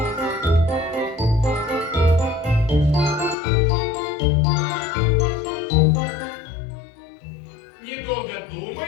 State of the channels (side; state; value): right; drops out; at 3.4 s